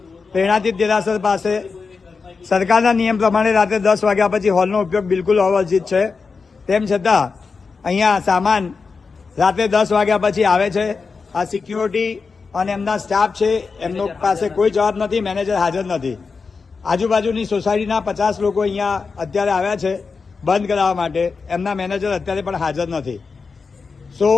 પ્રેરણાતીત દેરાસર પાસે. સરકારના નિયમ પ્રમાણે રાત્રે 10 વાગ્યા પછી હોલનો ઉપયોગ બિલકુલ અવર્જિત છે. તેમ છતાં અહીંયા સામાન રાત્રે 10 વાગ્યા પછી આવે છે. આ સિક્યુરિટી અને એમના સ્ટાફ છે, એમનો પાસે કોઈ જવાબ નથી. મેનેજર હાજર નથી. આજુબાજુની સોસાયટીના 50 લોકો અહીંયા અત્યારે આવ્યા છે બંધ કરાવવા માટે. એમના મેનેજર અત્યારે પણ હાજર નથી.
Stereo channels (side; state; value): right; quieter; 4.8 dB